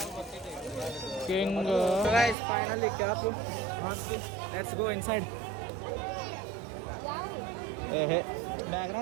king guys finally cap let's go inside ಏಹೇ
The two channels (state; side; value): drops out; left; at 2.4 s